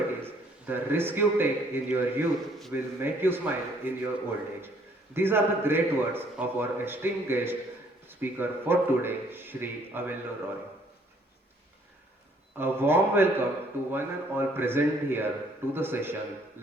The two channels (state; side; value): normal; both; correlation 0.63